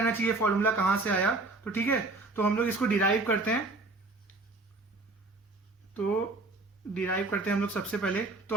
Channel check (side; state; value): left; quieter; 3.3 dB